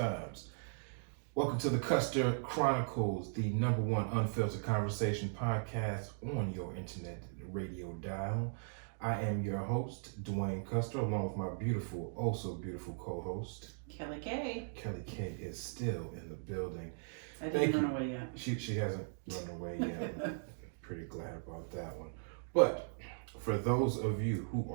Welcome to the Custer Chronicles, the #1 unfiltered conversation podcast on your internet radio dial. I am your host, Dwayne Custer, along with my beautiful, oh so beautiful co-host, Kelly K. Kelly K is still in the building. I didn't run away yet. She hasn't run away yet. I'm pretty glad about that one. But for those of you who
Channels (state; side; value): silent; left; digital silence